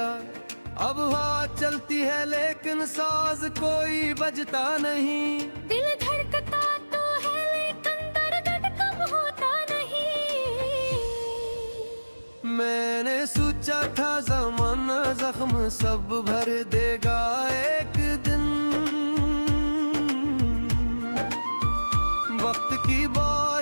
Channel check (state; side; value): inverted; both; correlation -1.00